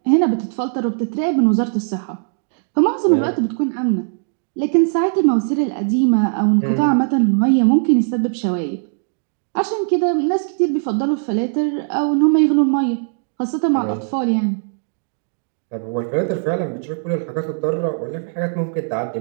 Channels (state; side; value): silent; left; digital silence